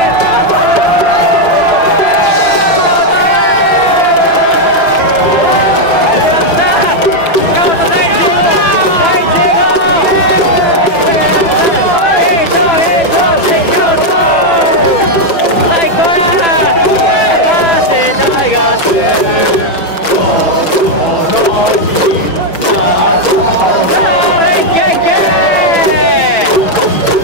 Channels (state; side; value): late; right; 6.1 ms